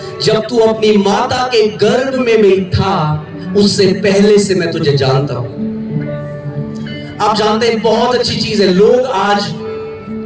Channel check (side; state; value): both; identical; correlation 1.00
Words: जब तू अपनी माता के गर्भ में भी था उससे पहले से मैं तुझे जानता हूं। आप जानते हैं बहुत अच्छी चीज है, लोग आज